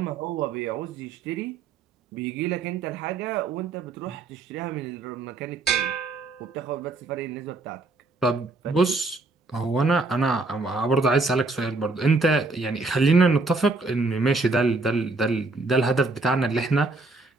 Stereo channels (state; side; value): quieter; left; 3.5 dB